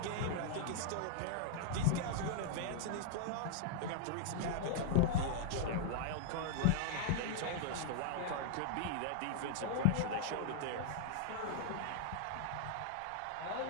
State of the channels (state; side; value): different; both; correlation -0.01